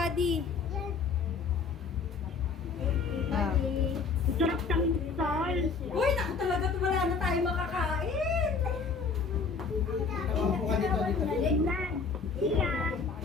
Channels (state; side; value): quieter; right; 4.9 dB